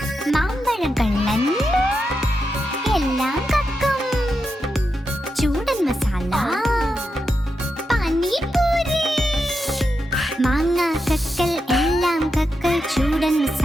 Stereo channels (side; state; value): both; normal; correlation 0.87